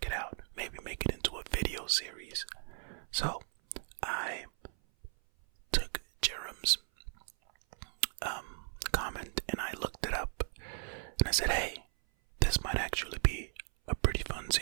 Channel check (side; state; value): left; silent; 54 dB below the other